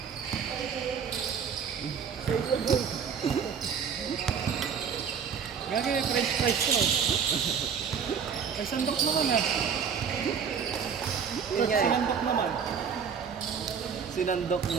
Gagi may french fries ko. Ay, sandok naman ah. Yun nga eh. Sinandok naman. Sinandok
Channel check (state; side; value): quieter; left; 6.8 dB